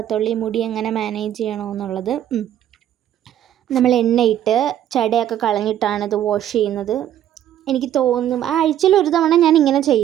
ഈ മുടി എങ്ങനെ മാനേജ് ചെയ്യണമെന്നുള്ളത്. നമ്മൾ എണ്ണയിട്ട് ചടയൊക്കെ കളഞ്ഞിട്ടാണ് ഇത് വാഷ് ചെയ്യുന്നത്. എനിക്ക് തോന്നും ആഴ്ചയിൽ ഒരു തവണ ഞാൻ ഇങ്ങനെ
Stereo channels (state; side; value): quieter; left; 11.3 dB